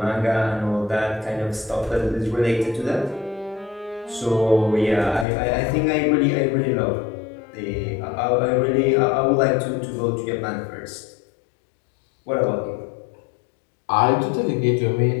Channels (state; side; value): drops out; right; at 5.2 s